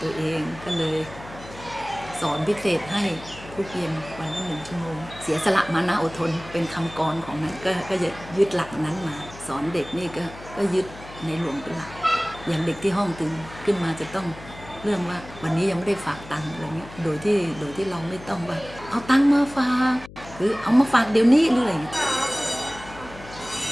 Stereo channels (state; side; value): noise; left; hum, 17 dB below the sound